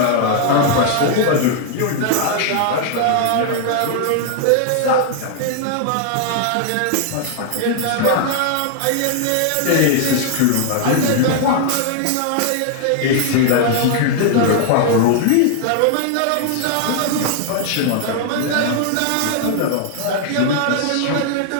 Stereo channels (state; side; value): different; both; correlation 0.00